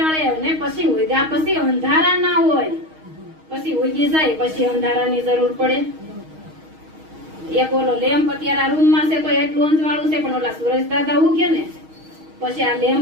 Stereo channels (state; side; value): late; left; 6.4 ms